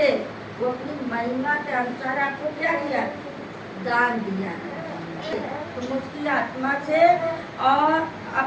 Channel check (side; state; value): both; identical; correlation 1.00